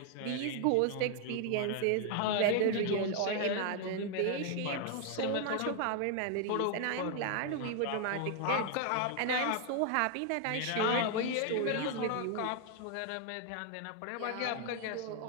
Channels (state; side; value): different; both; correlation 0.00